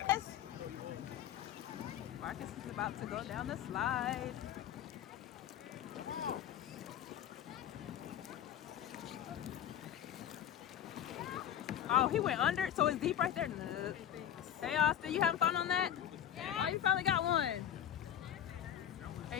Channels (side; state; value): right; quieter; 10.4 dB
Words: Marcus is about to go down the slide. Oh, he went under, so it's deep right there. Look. Hey, Austin, you having fun on that? Yeah. Oh, you finally got one.